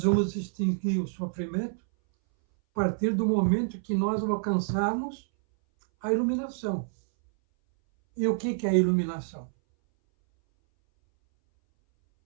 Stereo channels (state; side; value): silent; left; 60 dB below the other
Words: vamos extinguir o sofrimento a partir do momento que nós alcançarmos a iluminação. E o que é a iluminação?